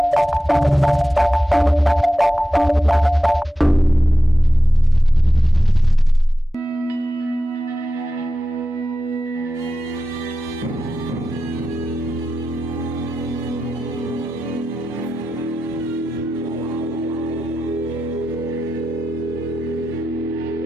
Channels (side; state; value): both; normal; correlation 0.92